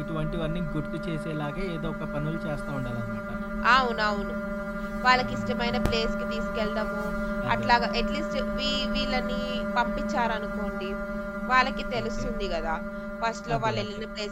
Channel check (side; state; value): both; identical; correlation 1.00